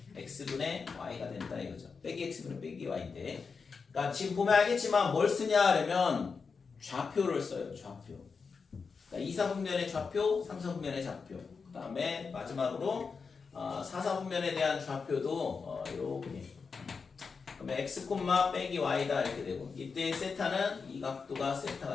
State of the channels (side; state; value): right; quieter; 5.1 dB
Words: x분의 y가 된다 이거죠. 빼기 x분의 빼기 y인데 그러니까 지금 보면 알겠지만 뭘 쓰냐 하면 좌표를 써요. 좌표. 그러니까 2, 4분면의 좌표, 3, 4분면의 좌표. 그 다음에 마지막으로 4, 4분면에 대한 좌표도 이렇게. 그러면 x, 빼기 y다 이렇게 되고 이때 세타는 이 각도가